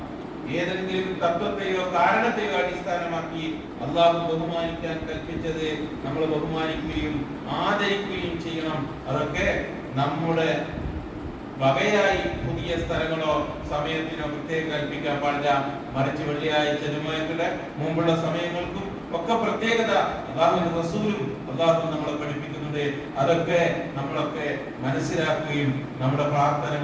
ഏതെങ്കിലും തത്വത്തെയോ കാരണത്തെയോ അടിസ്ഥാനമാക്കി അള്ളാഹു ബഹുമാനിക്കാൻ കൽപ്പിച്ചത് നമ്മൾ ബഹുമാനിക്കുകയും ആദരിക്കുകയും ചെയ്യണം. അതൊക്കെ നമ്മുടെ വകയായി പുതിയ സ്ഥലങ്ങളോ സമയത്തിനോ പ്രത്യേകം കൽപ്പിക്കാൻ പാടില്ല. മറിച്ച് വെള്ളിയാഴ്ച ജുമുഅയുടെ മുമ്പുള്ള സമയങ്ങൾക്കും ഒക്കെ പ്രത്യേകത അല്ലാഹുവിന്റെ റസൂലും അല്ലാഹു നമ്മളെ പഠിപ്പിക്കുന്നുണ്ട്. അതൊക്കെ നമ്മളൊക്കെ മനസ്സിലാക്കുകയും നമ്മുടെ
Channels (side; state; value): both; identical; correlation 1.00